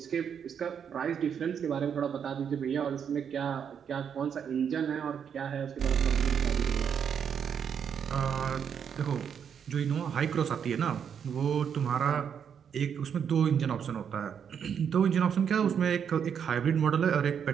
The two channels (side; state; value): left; quieter; 7.7 dB